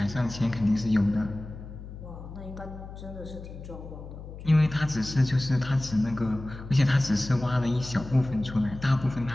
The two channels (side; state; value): left; noise; hum, 13 dB below the sound